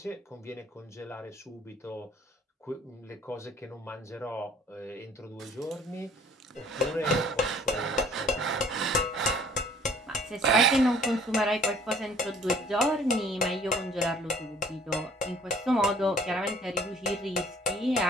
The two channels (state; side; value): normal; both; correlation 0.56